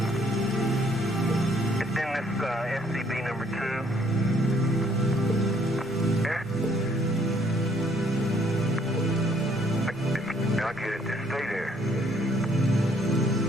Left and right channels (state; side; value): normal; both; correlation 0.65